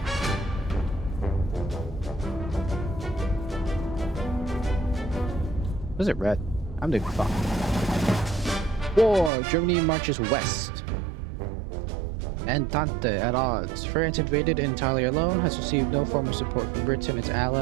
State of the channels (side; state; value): left; drops out; at 9.3 s